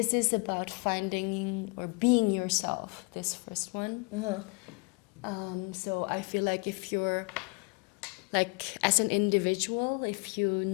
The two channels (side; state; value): right; quieter; 30.4 dB